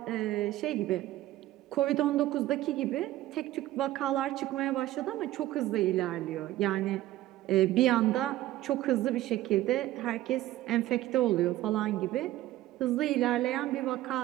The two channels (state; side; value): quieter; left; 15.4 dB